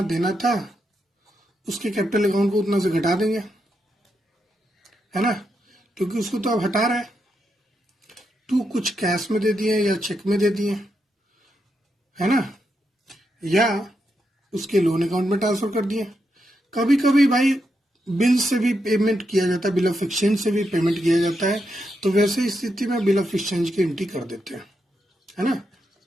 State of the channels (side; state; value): both; normal; correlation 0.83